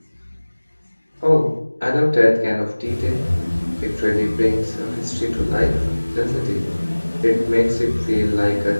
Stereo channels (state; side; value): inverted; both; correlation -1.00